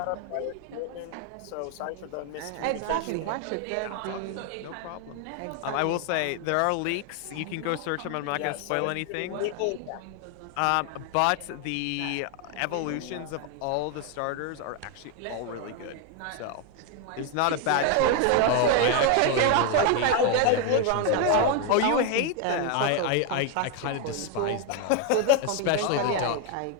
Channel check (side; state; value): both; different; correlation 0.01